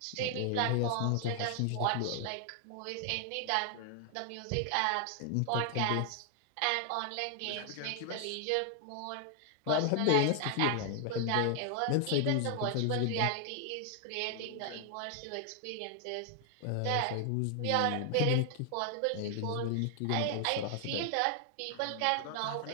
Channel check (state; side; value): different; both; correlation 0.00